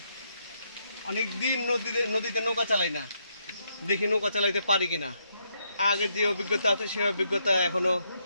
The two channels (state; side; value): inverted; both; correlation -0.76